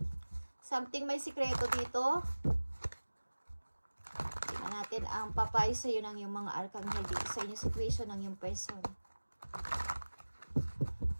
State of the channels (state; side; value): inverted; both; correlation -1.00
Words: Something may sikreto dito. Tingnan natin ang papayo sa iyo ng yung mga arkanghel dito sa inyong situation ng yung person.